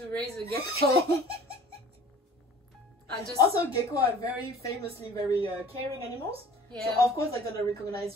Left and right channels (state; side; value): normal; both; correlation 0.47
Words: raise a gecko? Also, gecko are very famously very caring animals. Yeah. So of course they're gonna recognize